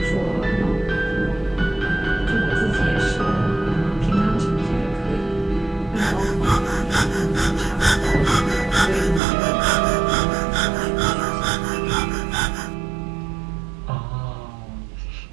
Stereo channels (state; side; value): drops out; left; at 9.2 s